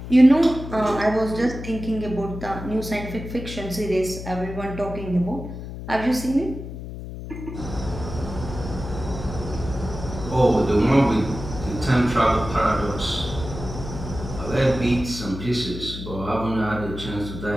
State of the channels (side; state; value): left; noise; hum, 9 dB below the sound